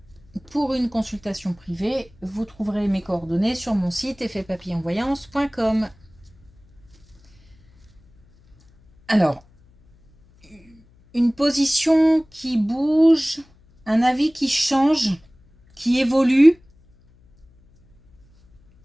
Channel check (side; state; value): left; noise; hum, 30 dB below the sound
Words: Pour une consultation privée, vous trouverez mes coordonnées sur mon site effetpapillonvoyance.com. Alors, une position qui bouge, un avis qui change, qui évolue.